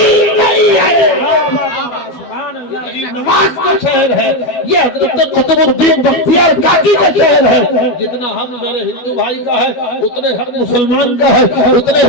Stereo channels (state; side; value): late; right; 12 ms